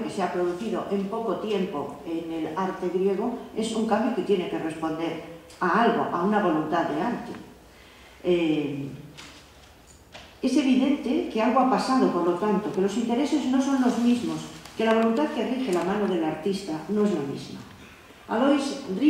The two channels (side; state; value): both; identical; correlation 1.00